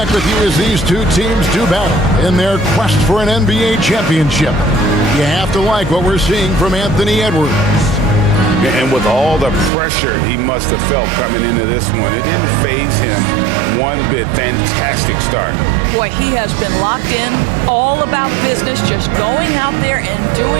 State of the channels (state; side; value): drops out; left; at 9.7 s